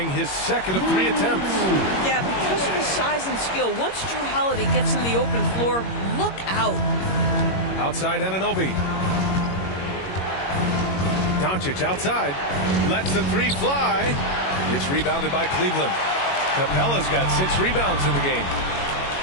his second of 3 attempts. Yeah, because of his size and skill, once Drew Holiday gets in the open floor, look out. Outside Anunoby. Doncic outside. Lets the 3 fly. It's rebounded by Cleveland. Capella's got 6 rebounds in the game.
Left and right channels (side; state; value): right; late; 21 ms